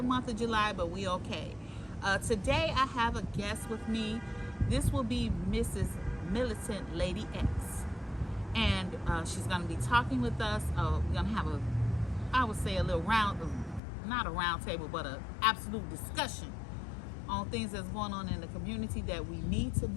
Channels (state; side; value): drops out; right; at 13.8 s